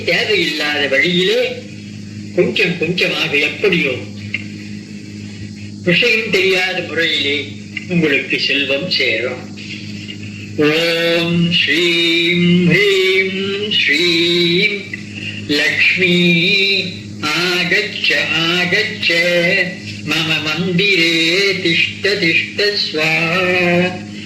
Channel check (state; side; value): identical; both; correlation 1.00